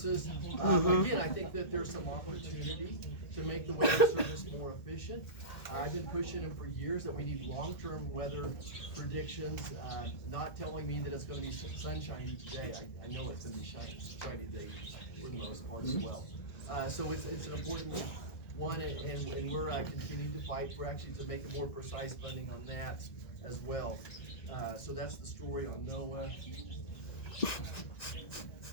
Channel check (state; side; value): late; right; 1.6 ms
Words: Again, I think that there's some opportunity to make the weather service more efficient. I've been pushing them for years that we need long-term weather predictions, not telling me that it's going to be sunshiny today. I know it's going to be shiny today for the most part as well. So it's an important one, and we're continuing to fight for actually to make a more precise funding on that as well. So that's the story on NOAA.